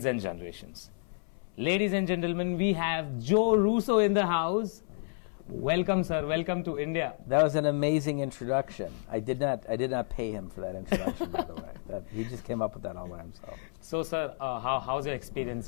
and generations. Ladies and gentlemen, we have Joe Russo in the house. Welcome, sir. Welcome to India. That was an amazing introduction. I did not pay him for that introduction, by the way. He just came up with that all by himself. So, sir, how's your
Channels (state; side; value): silent; right; 57 dB below the other